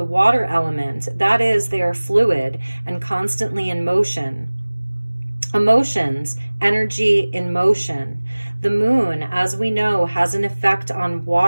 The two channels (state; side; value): inverted; both; correlation -1.00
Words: water element. That is, they are fluid and constantly in motion. Emotions, energy in motion. The moon, as we know, has an effect on